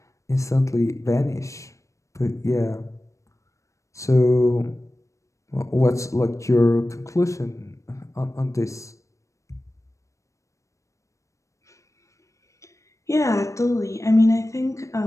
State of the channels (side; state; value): right; late; 0.15 ms